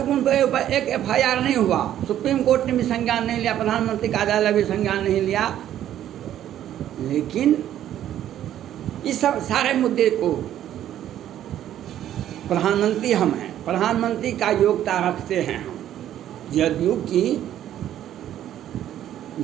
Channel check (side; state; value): left; quieter; 11.5 dB